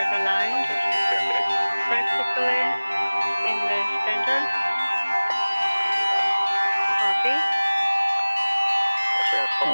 aligned. Practically in the center. Copy.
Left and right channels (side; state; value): both; inverted; correlation -1.00